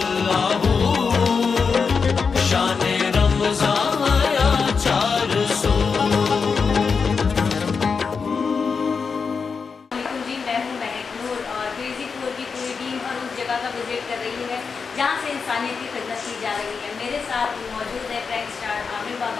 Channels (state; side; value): quieter; right; 5.4 dB